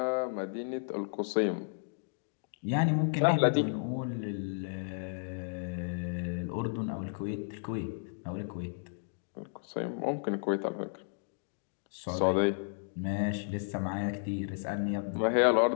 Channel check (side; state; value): right; silent; digital silence